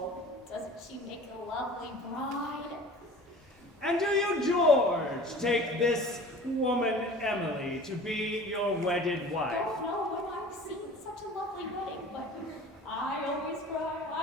doesn't she make a lovely bride? And do you, George, take this woman Emily to be your wedded wife? Don't know when I've seen such a lovely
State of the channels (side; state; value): both; normal; correlation 0.42